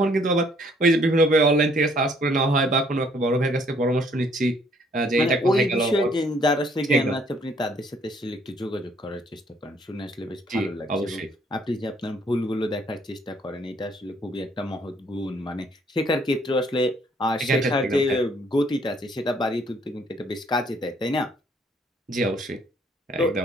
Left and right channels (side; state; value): both; normal; correlation 0.64